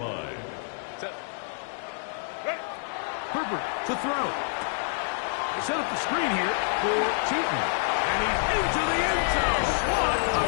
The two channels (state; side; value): silent; right; digital silence